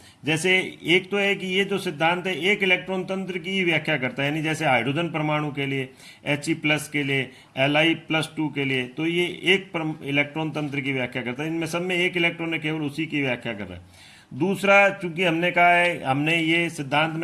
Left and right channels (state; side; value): identical; both; correlation 1.00